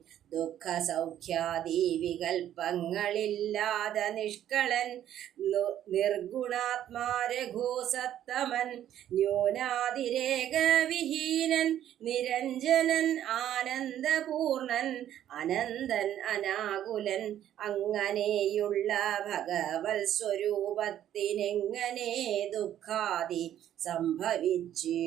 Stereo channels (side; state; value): left; quieter; 11.3 dB